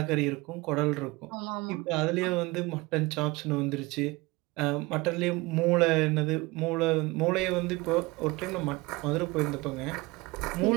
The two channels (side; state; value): left; quieter; 22.9 dB